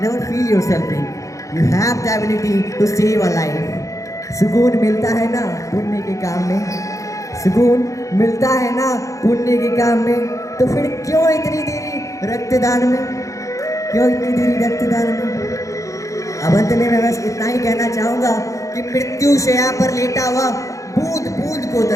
never feel yourself weak, you have the ability to save a life. सुकून मिलता है ना पुण्य के काम में, सुकून मिलता है ना पुण्य के काम में, तो फिर क्यों इतनी देरी रक्तदान में, क्यों इतनी देरी रक्तदान में। अब अंत में मैं बस इतना ही कहना चाहूँगा कि मृत्यु शैया पर लेटा हुआ बूंद बूंद को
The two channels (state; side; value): late; right; 0.15 ms